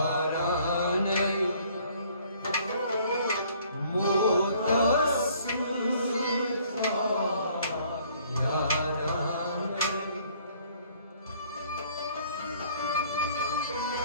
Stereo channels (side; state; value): both; inverted; correlation -0.59